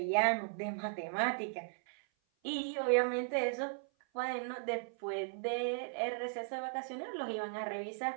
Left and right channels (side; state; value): left; silent; 53 dB below the other